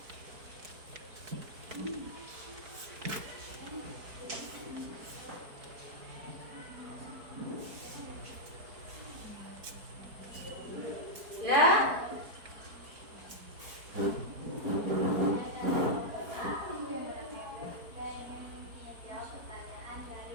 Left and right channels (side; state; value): left; late; 4.6 ms